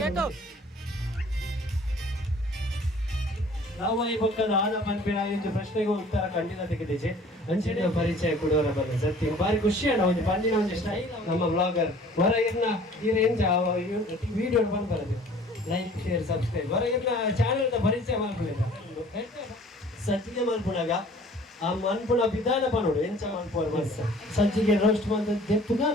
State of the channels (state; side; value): normal; both; correlation 0.51